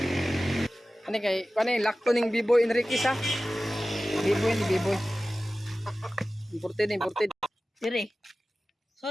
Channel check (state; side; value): normal; both; correlation 0.96